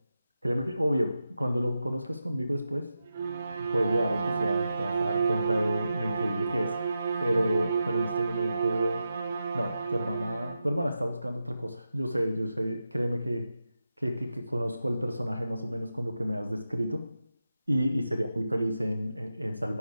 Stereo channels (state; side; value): inverted; both; correlation -0.90